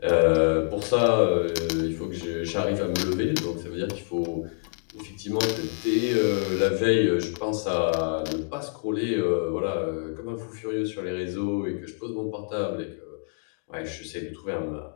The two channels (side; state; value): right; silent; 60 dB below the other